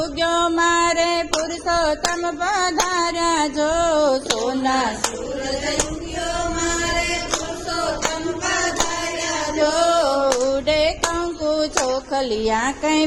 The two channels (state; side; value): identical; both; correlation 1.00